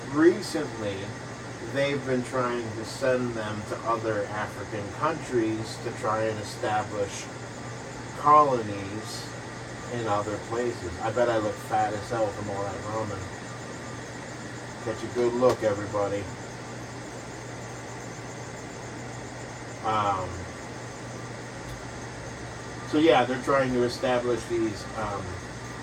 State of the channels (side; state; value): both; identical; correlation 1.00